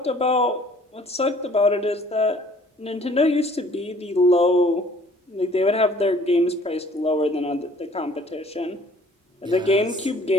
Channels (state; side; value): normal; both; correlation 0.56